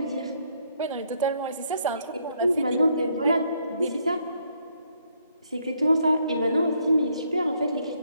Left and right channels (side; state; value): both; inverted; correlation -0.72